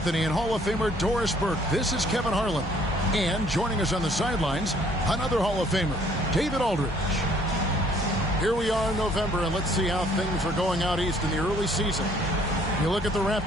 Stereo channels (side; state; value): both; normal; correlation 0.61